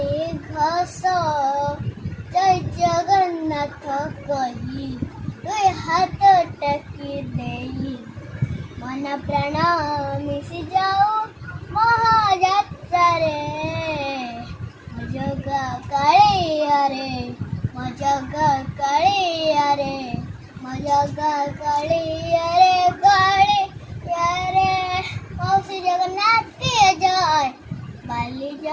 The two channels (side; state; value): both; identical; correlation 1.00